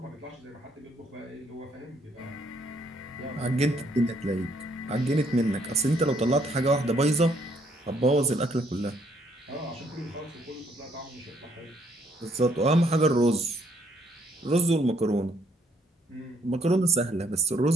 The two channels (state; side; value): normal; both; correlation 0.68